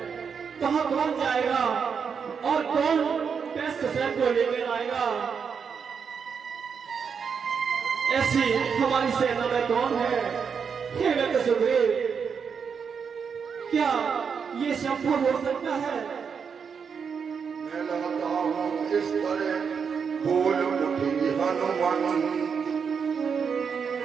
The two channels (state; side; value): quieter; left; 6.4 dB